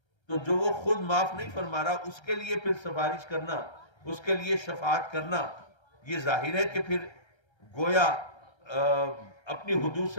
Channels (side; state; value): right; late; 1.3 ms